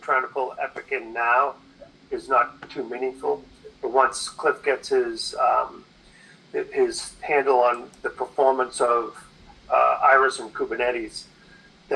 trying to pull Epic in now is not too meaningful. But once Cliff gets his handle on the performance of Iris and Kubernetes,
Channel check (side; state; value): both; identical; correlation 1.00